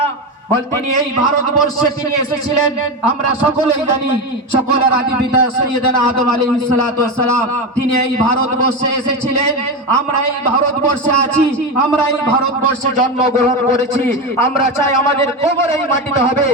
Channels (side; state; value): both; normal; correlation 0.16